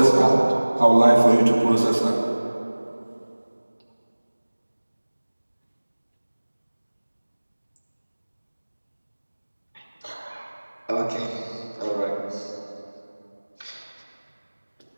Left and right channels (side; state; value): both; inverted; correlation -1.00